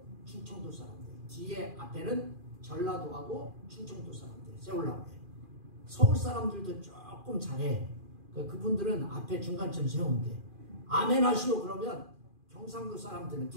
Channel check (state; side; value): late; left; 2.4 ms